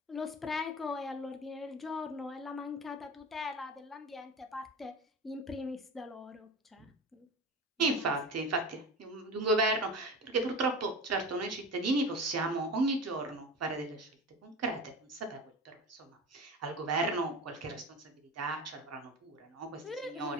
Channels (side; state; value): both; normal; correlation 0.31